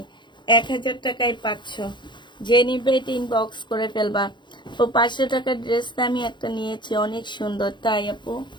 1000 টাকায় 500। যে নিবে এটা ইনবক্স করে ফেলবা। তো 500 টাকার ড্রেসটা আমি একটা নিয়েছি, অনেক সুন্দর, তাই আপু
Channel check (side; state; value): right; late; 0.22 ms